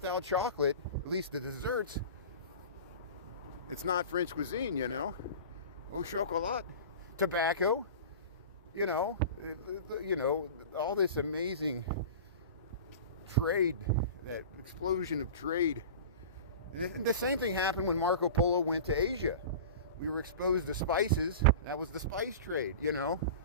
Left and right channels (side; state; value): both; inverted; correlation -0.34